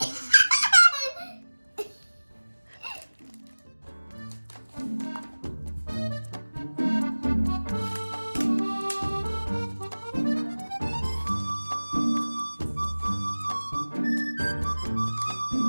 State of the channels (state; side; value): inverted; both; correlation -1.00